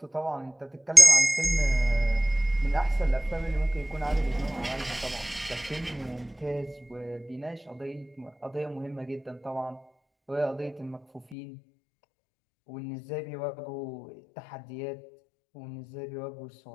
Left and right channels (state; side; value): drops out; right; at 11.4 s